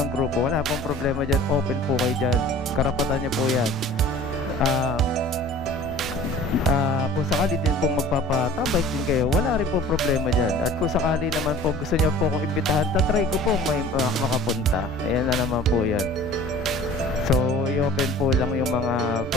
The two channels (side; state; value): both; normal; correlation 0.45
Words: grupo, wala pong problema dyan, open po kayo dyan, karapatan nyo po yan. Kung sakali din pong magpapatambike din kayo, wala rin pong problema dyan. At kung sakali naman po gusto nyo po kong imbitahan, tatry ko pong may makapunta. Ayan na naman po yan. So i-open po lang yung mga